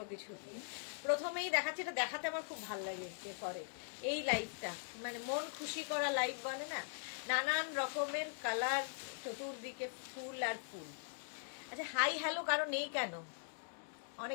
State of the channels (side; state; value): right; silent; digital silence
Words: কিছু দিয়ে। প্রথমেই দেখাচ্ছি, এটা দেখাতে আমার খুব ভালো লাগে ডেকরে এই লাইভটা, মানে মন খুশি করা লাইভ বলে না, নানান রকমের কালার, চতুর্দিকে ফুল আর ফুল। আচ্ছা, হাই হ্যালো কারো নেই কেন?